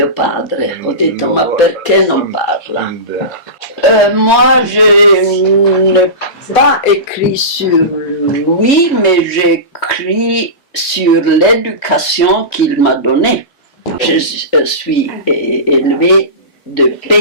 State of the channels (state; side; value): late; right; 3.2 ms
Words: padre. Ho detto, ma perché non parla? Moi, je n'ai pas écrit sur lui, mais j'écris sur l'éducation qu'il m'a donnée. Je suis élevée de